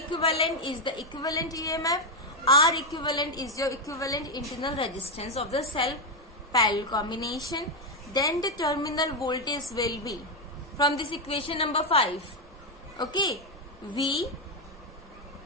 is the equivalent EMF. R equivalent is your equivalent internal resistance of the cell parallel combination. Then the terminal voltage will be from this equation number 5. Okay, V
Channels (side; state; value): both; normal; correlation 0.05